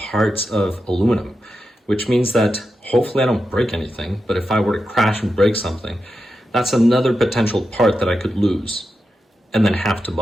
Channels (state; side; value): normal; both; correlation 0.89